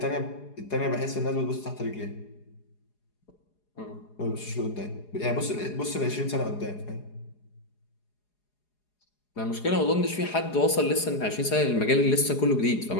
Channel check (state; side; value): late; right; 4.8 ms